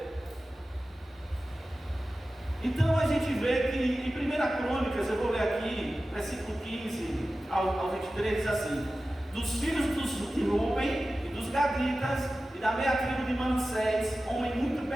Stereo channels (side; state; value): both; normal; correlation 0.95